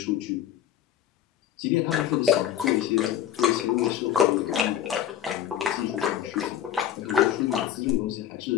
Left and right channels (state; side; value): quieter; right; 10.5 dB